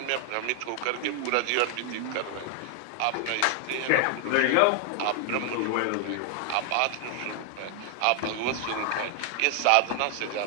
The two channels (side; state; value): both; different; correlation 0.00